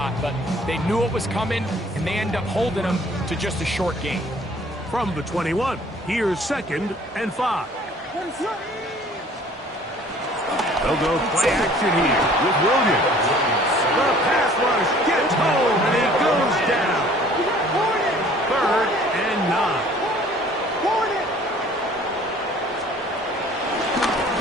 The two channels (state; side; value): normal; both; correlation 0.53